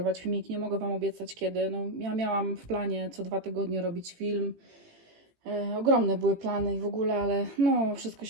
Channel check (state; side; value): late; left; 18 ms